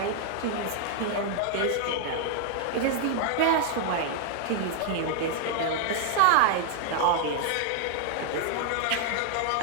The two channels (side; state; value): both; different; correlation 0.00